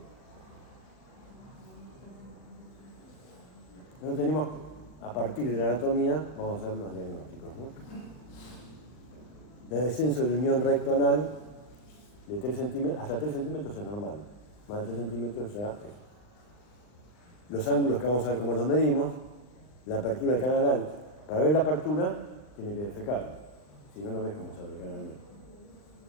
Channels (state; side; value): late; right; 40 ms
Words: Nosotros tenemos, a partir de la anatomía, vamos a ver los diagnósticos, ¿no? El descenso de la unión recto-anal de 3 centímetros, hasta 3 centímetros es normal. Más de 3 centímetros ya es. Los ángulos que vamos a ver cómo los medimos, la apertura del canal anal. Para ver la apertura, tiene que defecar. Si no, no ves cómo sale el canal anal.